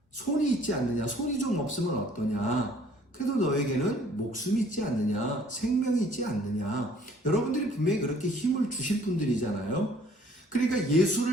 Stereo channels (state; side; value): normal; both; correlation 0.58